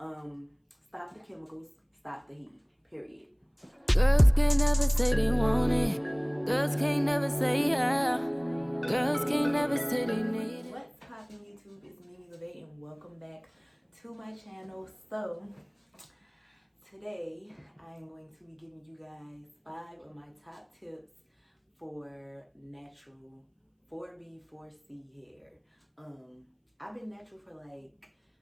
the chemicals, stop the heat, period. Girls can't never say they want it. Girls can't never say yeah. Girls can't never say they need it. What's poppin' YouTube? It's Mimi LeVay and welcome back to my channel. So today I am going to be giving you guys 5 of my top tips for natural 4B 4C hair. I've been natural for like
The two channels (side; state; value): both; identical; correlation 1.00